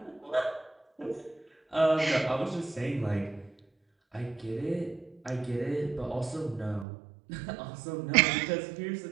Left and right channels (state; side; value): drops out; left; at 6.9 s